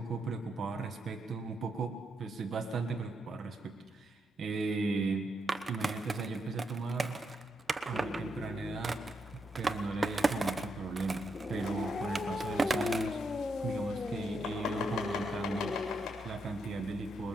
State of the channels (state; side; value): normal; both; correlation 0.81